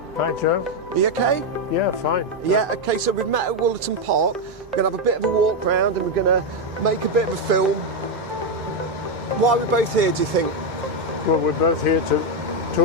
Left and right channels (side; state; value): both; normal; correlation 0.05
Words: Hi Joe. Are you okay? Yeah, fine. Yeah, okay, so we've met at Wollaton Park. We're going to have a bit of a walk round and we're going to make a bit of a film. Why are we both here, do you think? Well, we're both here to